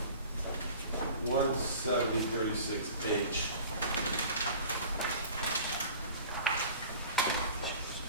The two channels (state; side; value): inverted; both; correlation -0.42